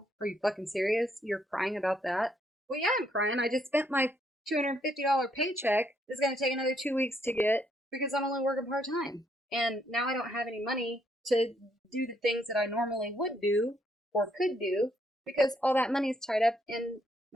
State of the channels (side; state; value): both; normal; correlation 0.72